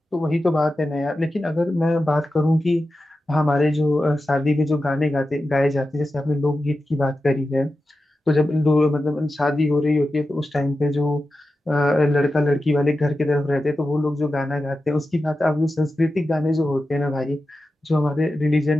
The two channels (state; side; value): normal; both; correlation 0.92